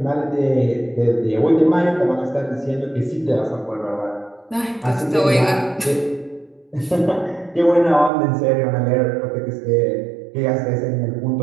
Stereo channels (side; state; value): left; drops out; at 8.1 s